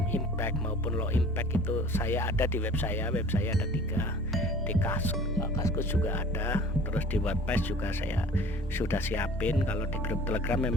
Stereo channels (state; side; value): normal; both; correlation 0.47